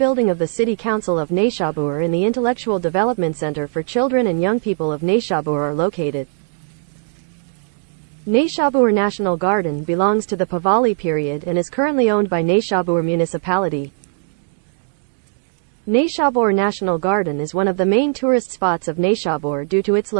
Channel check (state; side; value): silent; left; digital silence